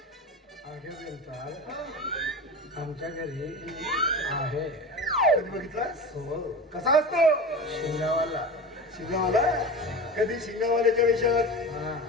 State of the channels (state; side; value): normal; both; correlation 0.29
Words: आमच्या घरी आहे. कधी बघितलास? हो. कसा असतो? शिंगावाला. शिंगावाला? कधी शिंगावाल्याच्या वेशात, हा.